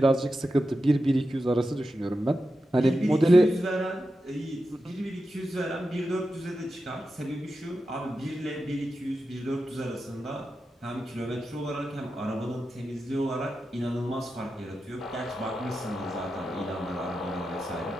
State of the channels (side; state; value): both; normal; correlation 0.90